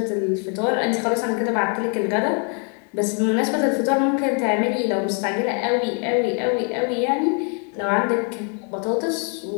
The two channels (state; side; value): quieter; right; 40.0 dB